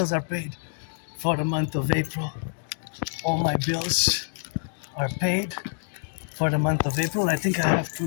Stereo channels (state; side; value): silent; right; 61 dB below the other